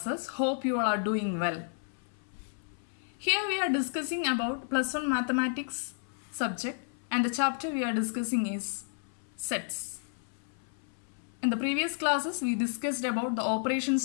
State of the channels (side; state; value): right; silent; 57 dB below the other